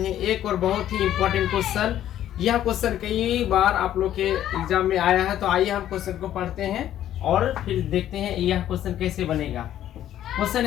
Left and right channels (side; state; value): right; quieter; 11.8 dB